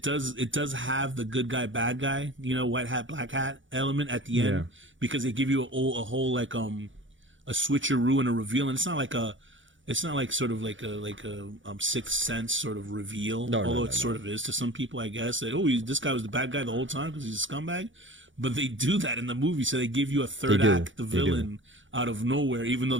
does have the good guy, bad guy, white hat, black hat element at the end, because they give you a whole like a switcheroo and a reveal, and it's not like sort of like a Sixth Sense sort of reveal, although it sort of is to some people, I guess, that this guy was the bad guy the whole time because he's a scumbag. But they do that in the movie, so they give you a third act, the villain, out of nowhere, even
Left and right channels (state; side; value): late; left; 0.56 ms